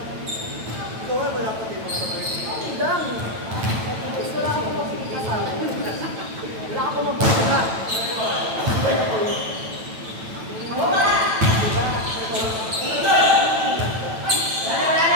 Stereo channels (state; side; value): late; left; 9.0 ms